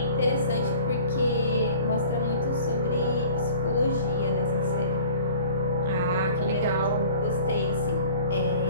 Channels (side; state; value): both; inverted; correlation -0.46